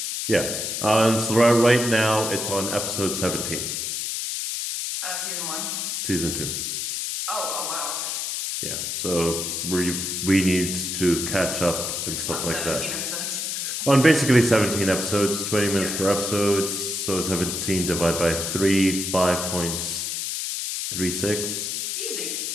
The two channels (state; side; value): noise; left; hiss, 2 dB below the sound